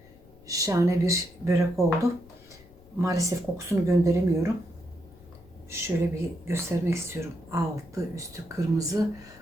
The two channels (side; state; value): left; noise; rumble, 25 dB below the sound